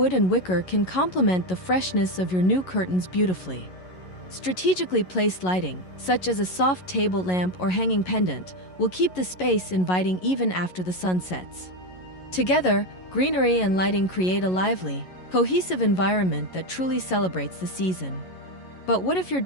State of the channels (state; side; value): late; right; 11 ms